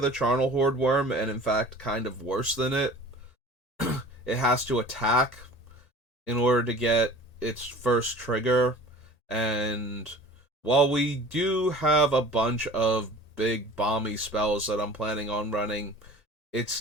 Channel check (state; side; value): late; right; 1.8 ms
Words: Charnel Horde Worm, and in fact, kind of worse than it, it has to attack in order to get its first trigger. And while we do have a bunch of big bomby spells that I'm planning on running,